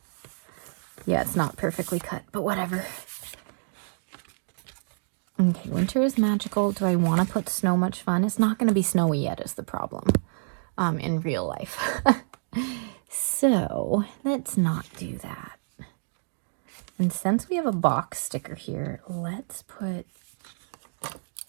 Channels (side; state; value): left; silent; digital silence